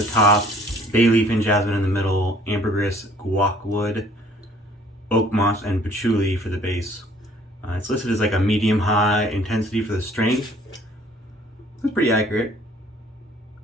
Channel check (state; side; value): normal; both; correlation 0.57